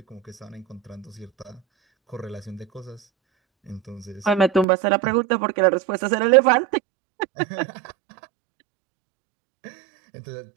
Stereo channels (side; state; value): left; drops out; at 4.7 s